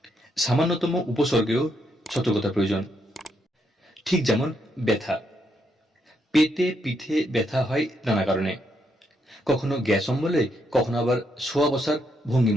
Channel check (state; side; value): normal; both; correlation 0.77